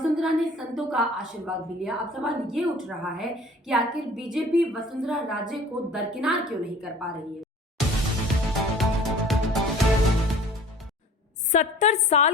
ने संतों का आशीर्वाद भी लिया। अब सवाल ये उठ रहा है कि आखिर बीजेपी वसुंधरा राजे को दरकिनार क्यों नहीं कर पा रही है। 70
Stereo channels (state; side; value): normal; both; correlation 0.47